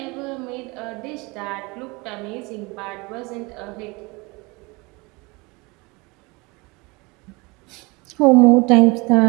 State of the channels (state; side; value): quieter; left; 25.9 dB